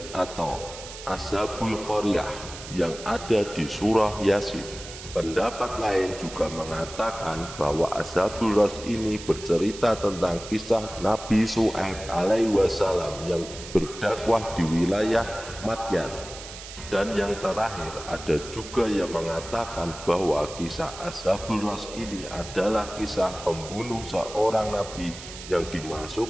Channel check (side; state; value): right; noise; hiss, 13 dB below the sound